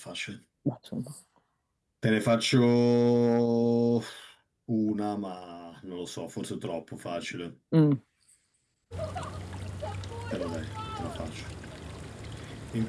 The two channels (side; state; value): both; identical; correlation 1.00